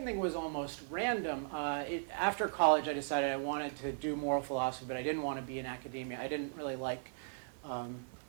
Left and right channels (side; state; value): left; silent; 53 dB below the other